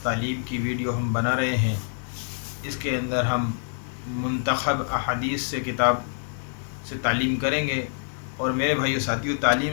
की वीडियो हम बना रहे हैं, इसके अंदर हम मुंतखब अहादीस से किताब से तालीम करेंगे। और मेरे भाइयों साथियों,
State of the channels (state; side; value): silent; right; digital silence